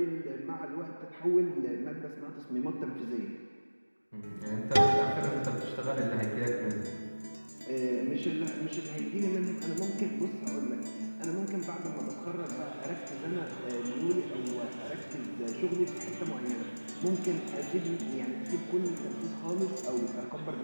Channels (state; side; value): inverted; both; correlation -1.00